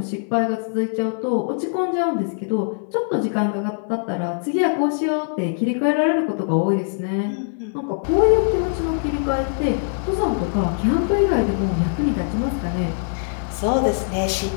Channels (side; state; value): right; silent; 64 dB below the other